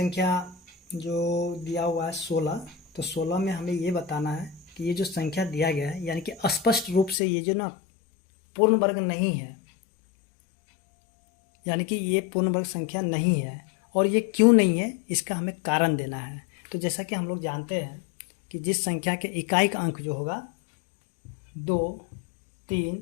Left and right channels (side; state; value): right; drops out; at 7.2 s